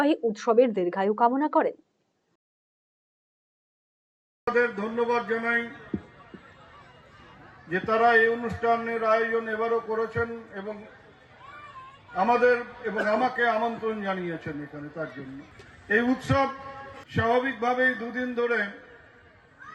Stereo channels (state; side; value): identical; both; correlation 1.00